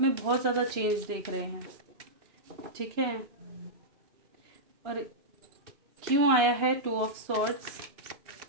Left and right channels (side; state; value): left; late; 2.9 ms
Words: में बहुत ज़्यादा चेंज देख रहे हैं। ठीक है, और क्यों आया है 2 ऑफ सॉर्ड्स?